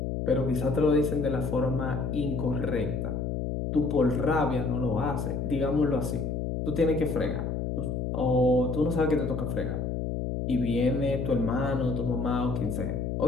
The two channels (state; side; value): noise; left; hum, 2 dB below the sound